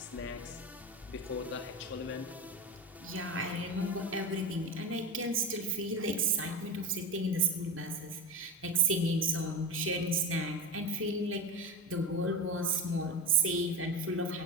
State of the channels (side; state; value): both; normal; correlation 0.22